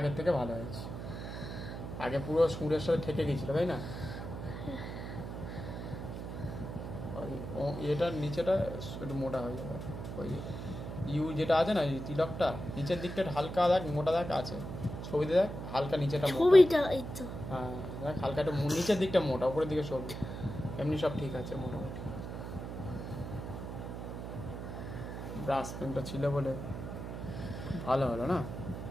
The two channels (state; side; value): noise; right; hum, 7 dB below the sound